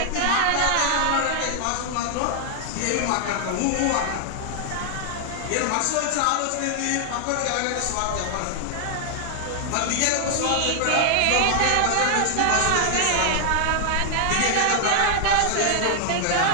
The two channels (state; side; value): different; both; correlation 0.00